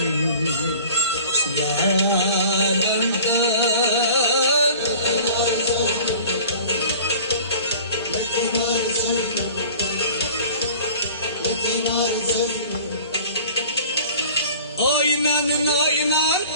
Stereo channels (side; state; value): both; inverted; correlation -0.45